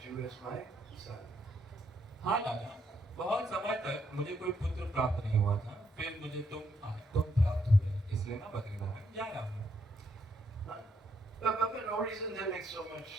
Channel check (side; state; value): both; normal; correlation 0.75